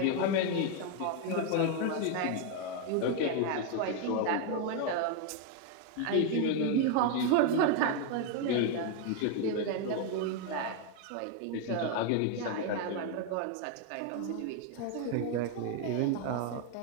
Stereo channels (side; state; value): both; different; correlation 0.01